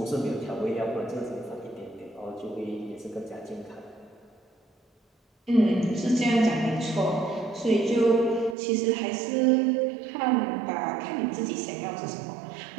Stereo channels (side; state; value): left; drops out; at 8.6 s